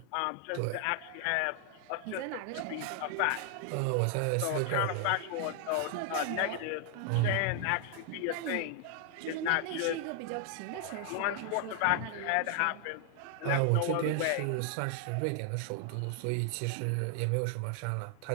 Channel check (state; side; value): different; both; correlation 0.00